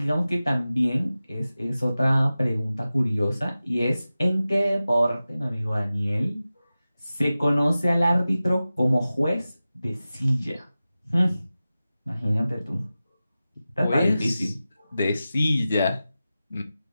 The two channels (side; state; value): both; inverted; correlation -0.95